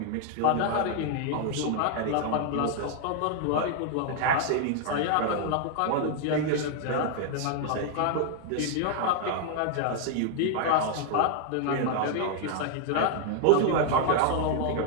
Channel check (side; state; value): both; different; correlation 0.00